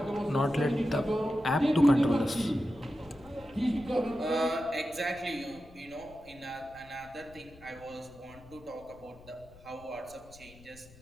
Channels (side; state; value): left; noise; rumble, 22 dB below the sound